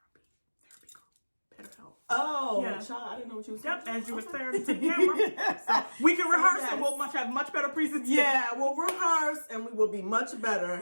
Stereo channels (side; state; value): both; inverted; correlation -1.00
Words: group. BetterHelp. Oh, Yeah. child, I didn't know what you was Yep, talking as you were about. staring to the camera. So we can rehearse yes. and we'll have much better presentation. Yeah, we'll rehearse and we will be much